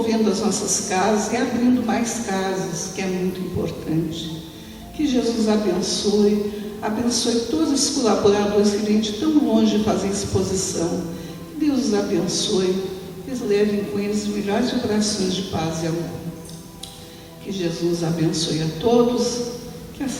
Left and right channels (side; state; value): both; identical; correlation 1.00